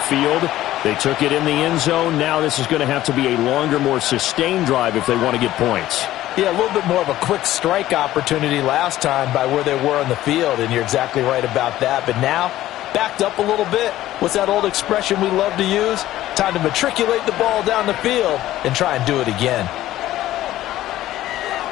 field. They took it in the end zone. Now this is going to have to be a longer, more sustained drive if they want to get points. Yeah, a little bit more of a quick strike opportunity last time by where they were on the field, and you're exactly right about that. But now, backed up a little bit. What's that old expression we love to use? Time to matriculate the ball down the field and try and do it again.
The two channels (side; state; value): right; quieter; 14.5 dB